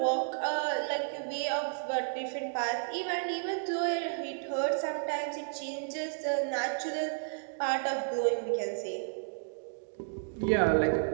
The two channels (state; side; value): silent; left; digital silence